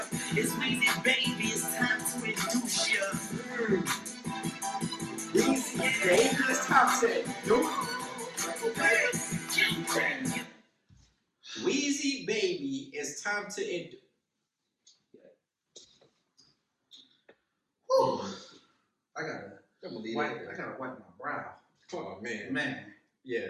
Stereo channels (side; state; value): both; identical; correlation 1.00